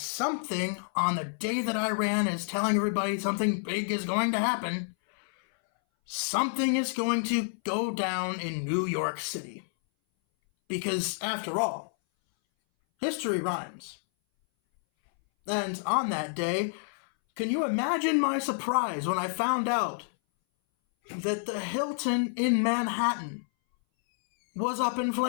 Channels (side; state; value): right; silent; 59 dB below the other